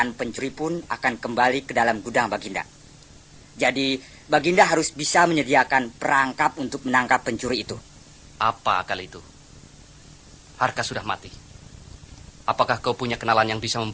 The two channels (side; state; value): both; identical; correlation 1.00